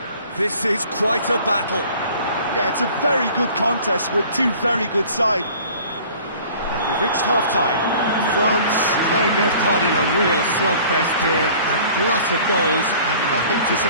This is quite a battle. Yeah, it's a very good contest with two very good sides. And we've reached half-time. France playing their part in a real slugfest here. A glut of goals and nothing to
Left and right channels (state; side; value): inverted; both; correlation -0.49